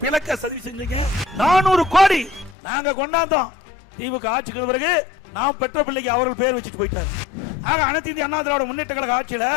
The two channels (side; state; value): right; drops out; at 2.6 s